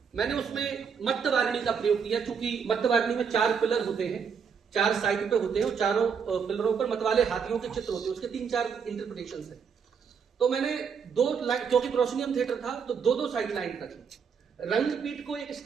मैंने उसमें मत्तवारिणी का प्रयोग किया, क्योंकि मत्तवारिणी में 4 पिलर होते हैं, 4 साइड पे होते हैं, और चारों पिलरों पर मतवाले हाथियों के चित्र होते हैं, उसके 3-4 इंटरप्रिटेशन है। तो मैंने 2 लाइन, क्योंकि प्रोसिनियम थिएटर था तो 2-2 साइड लाइन रखी। रंगपीठ को एक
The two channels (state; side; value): quieter; left; 6.5 dB